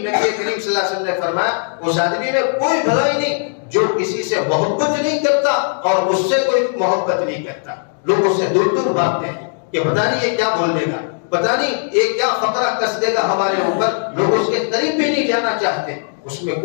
کریم صلی اللہ علیہ وسلم نے فرمایا اس آدمی میں کوئی بھلائی نہیں جو کسی سے محبت نہیں کرتا اور اس سے کوئی محبت نہیں کرتا۔ لوگ اس سے دور دور بھاگتے ہیں کہ پتہ نہیں یہ کیا بول دے گا، پتہ نہیں یہ کیا فقرہ کس دے گا ہمارے اوپر، لوگ اس کے قریب بھی نہیں جانا چاہتے، اس میں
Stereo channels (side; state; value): right; silent; digital silence